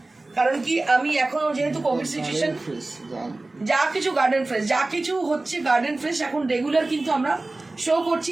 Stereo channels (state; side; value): quieter; left; 3.0 dB